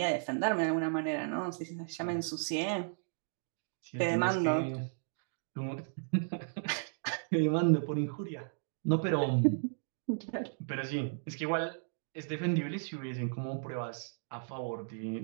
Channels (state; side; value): silent; left; digital silence